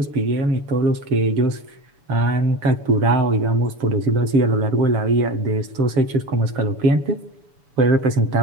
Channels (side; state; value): left; late; 7.0 ms